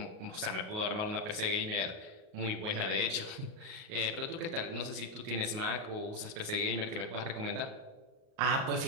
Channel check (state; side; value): late; left; 38 ms